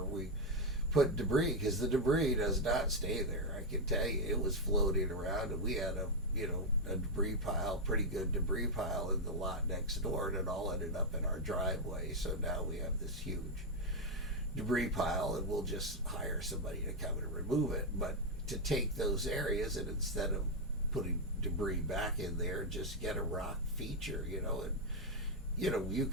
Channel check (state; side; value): normal; both; correlation 0.02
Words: we put debris, because the debris does not stay there. I can tell you, it was floating around, and we had a debris pile, pretty good debris pile in the lot next door, and it all ended up in our driveway. So now we have this huge debris pile, and we'll just hire somebody to come and remove it. But to take those areas, and instead of putting debris back in there, just get a rock feature, and you